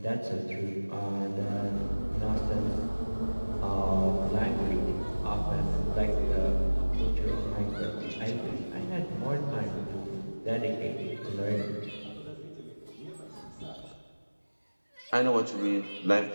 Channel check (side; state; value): both; inverted; correlation -1.00